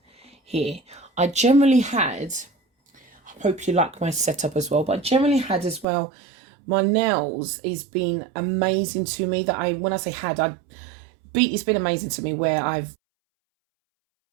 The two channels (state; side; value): drops out; left; at 5.9 s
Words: here, I generally had, I hope you like my setup as well, but I generally had as well, my nails has been amazing to me. That when I say had, it's been amazing to me where I've